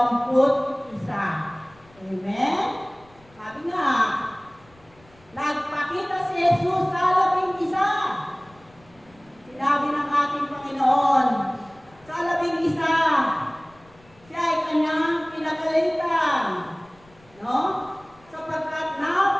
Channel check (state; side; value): noise; left; rumble, 28 dB below the sound